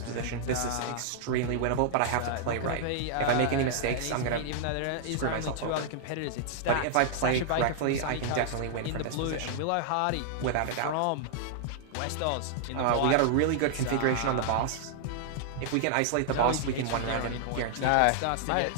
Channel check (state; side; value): different; both; correlation -0.01